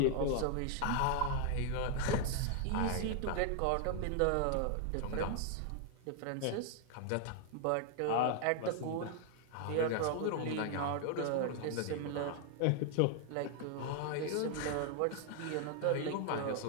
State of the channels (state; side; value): different; both; correlation 0.00